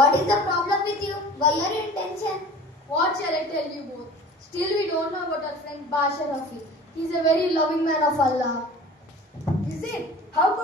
is the problem with you? Why are you in tension? What shall I tell you both? Still we don't know about our friend Basharafi. He is a very loving man of Allah. Is it? How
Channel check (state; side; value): normal; both; correlation 0.42